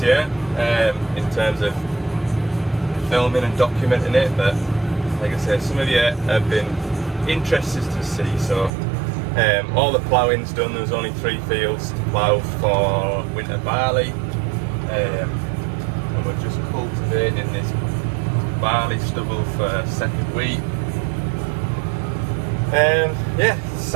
year in terms of filming and documenting it, but like I said, some of you have been interested to see. So all the ploughing's done. There was only 3 fields to plough for winter barley, and we're just cultivating this barley stubble for second wheat. Yeah,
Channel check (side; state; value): left; drops out; at 8.7 s